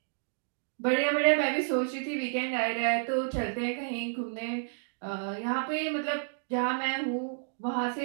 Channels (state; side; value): silent; left; digital silence